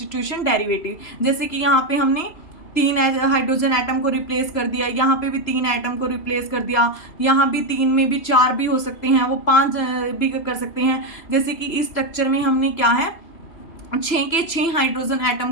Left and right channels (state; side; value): late; right; 3.0 ms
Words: डेरिवेटिव। जैसे कि यहाँ पे हमने 3 हाइड्रोजन एटम को रिप्लेस कर दिया, यहाँ पे भी 3 एटम को रिप्लेस कर दिया, यहाँ भी 3 में भी 4 भी हो सकते हैं, वो 5 भी कर सकते हैं। जैसे कि इस स्ट्रक्चर में हमने क्या है 6 के 6 हाइड्रोजन